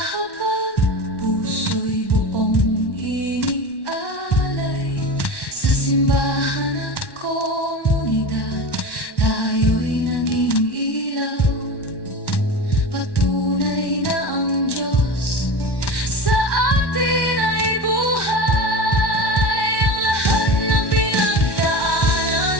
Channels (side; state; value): right; late; 1.1 ms